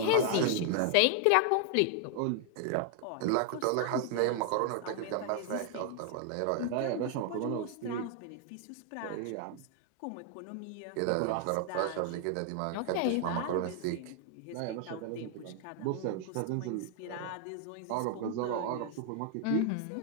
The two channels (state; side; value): different; both; correlation 0.00